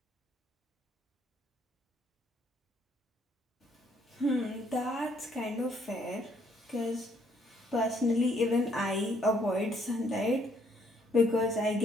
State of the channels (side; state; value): both; normal; correlation 0.67